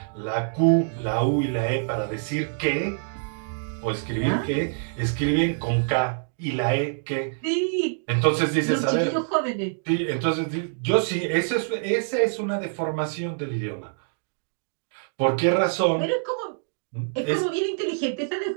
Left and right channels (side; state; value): left; silent; digital silence